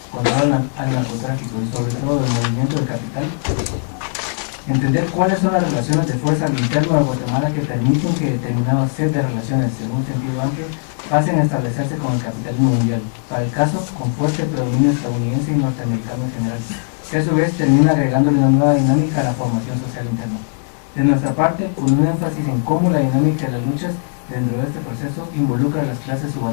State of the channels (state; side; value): silent; right; 67 dB below the other